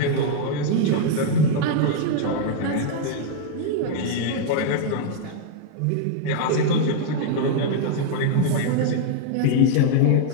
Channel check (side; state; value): both; different; correlation -0.01